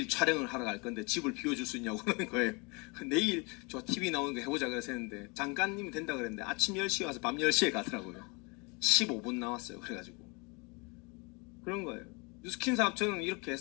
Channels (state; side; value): quieter; right; 29.6 dB